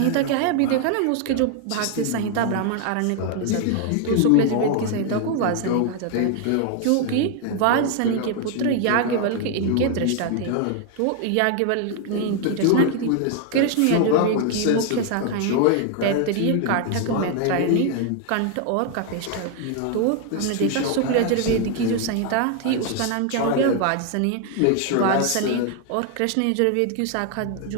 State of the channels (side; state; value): both; different; correlation 0.01